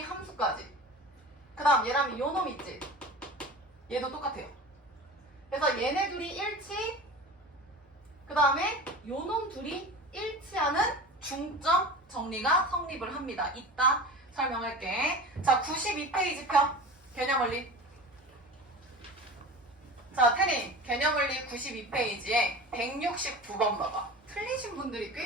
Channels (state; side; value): normal; both; correlation 0.34